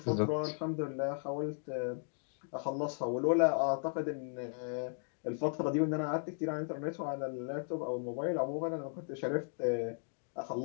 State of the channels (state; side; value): silent; right; 54 dB below the other